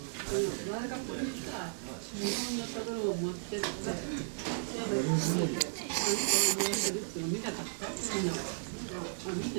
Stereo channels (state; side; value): silent; left; digital silence